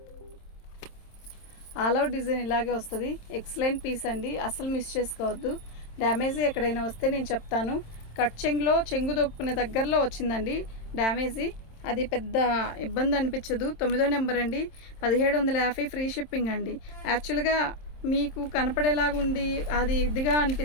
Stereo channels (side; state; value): right; late; 27 ms